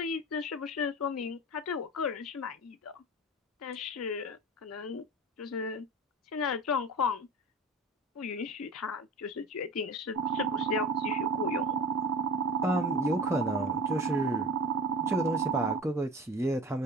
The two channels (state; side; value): normal; both; correlation 0.33